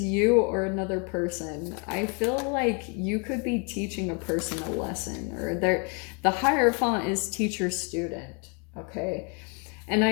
you or another person. I feel like you could be teaching a person a lesson, or the Hierophant is teacher-student, okay? And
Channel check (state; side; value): quieter; right; 35.5 dB